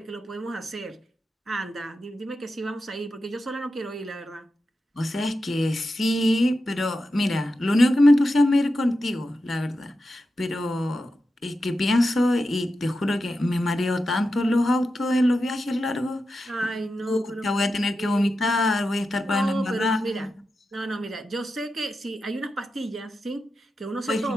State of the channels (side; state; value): both; normal; correlation 0.90